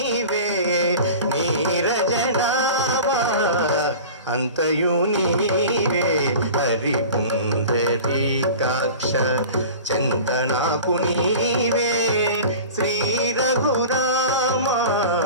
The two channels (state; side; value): inverted; both; correlation -0.38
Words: नीरजनाभ अंतयु नीवे हरि पुंडरीकाक्ष चिंतनाकु नीवे श्री रघुराम